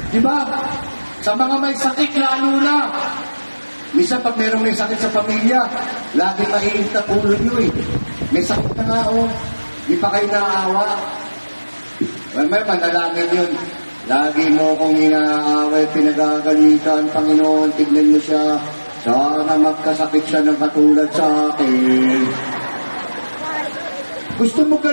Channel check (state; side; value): inverted; both; correlation -1.00